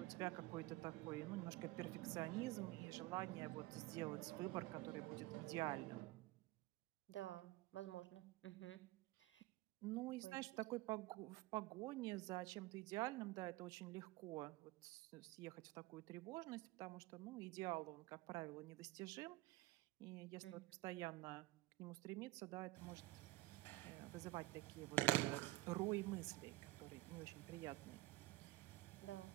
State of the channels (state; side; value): quieter; left; 18.7 dB